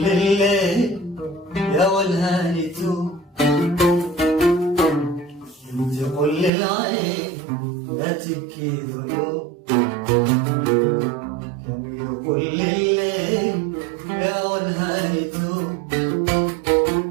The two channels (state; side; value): drops out; left; at 6.5 s